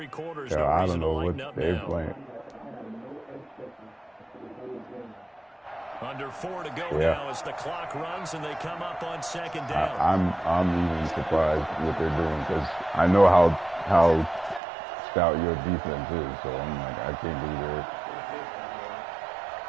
quarters, Yeah, I don't know what they're playing. Under 4 to go now as the clock runs and they come up on 2nd down. I'm even surprised what they're doing because I know how stout your defense is. So I'm like, I can't believe it.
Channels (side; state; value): left; drops out; at 14.6 s